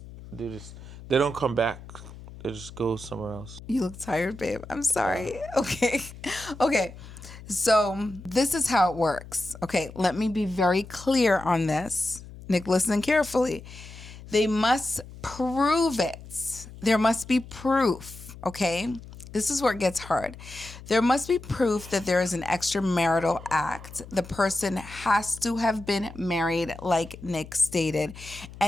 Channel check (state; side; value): noise; left; hum, 16 dB below the sound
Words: Do this. They don't come back. They just go somewhere else. You look tired, babe. I'm Yeah. sorry. Okay. Okay. So this is how it works. Okay. Let me be very clear on this. Nick, listen carefully. They must prove it. There must be proof. Okay. This is where it gets hard. There must be proof that there is an extramarital act. The person has to have been married, like Nick stated,